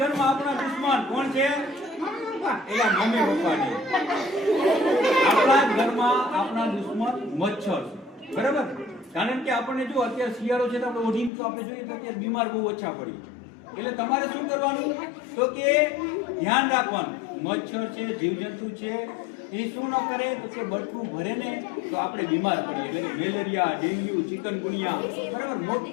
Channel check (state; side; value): drops out; right; at 11.3 s